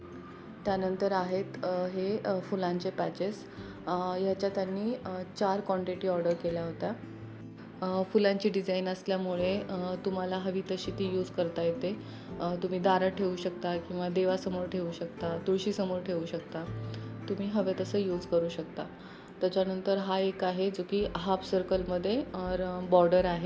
त्यानंतर आहेत हे फुलांचे पॅचेस. ह्याच्या त्यांनी 4 क्वांटिटी ऑर्डर केल्या होत्या. फुलांची डिझाईन असल्यामुळे तुम्हाला हवी तशी ती यूज करता येते. तुम्ही दारात ठेवू शकता किंवा देवासमोर ठेवू शकता, तुळशीसमोर ठेवू शकता. तुम्ही हवे तसं यूज करू शकता. त्याच्यानंतर हा एक आहे जो की हाफ सर्कलमध्ये बॉर्डर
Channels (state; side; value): identical; both; correlation 1.00